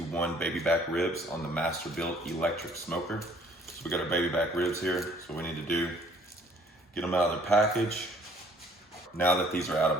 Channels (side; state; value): both; normal; correlation 0.58